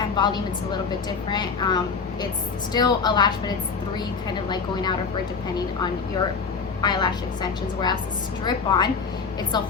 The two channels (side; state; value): right; quieter; 5.2 dB